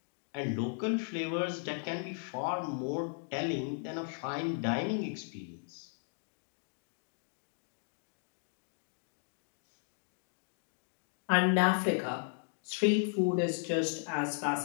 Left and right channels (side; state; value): right; silent; 54 dB below the other